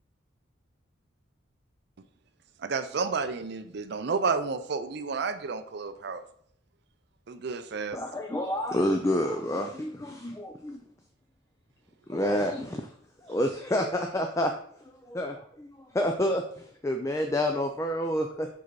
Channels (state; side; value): normal; both; correlation 0.41